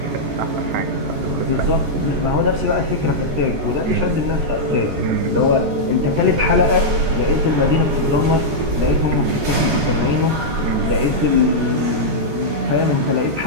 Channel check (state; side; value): late; left; 14 ms